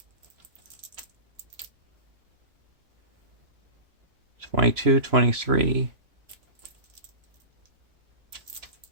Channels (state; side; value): late; left; 3.0 ms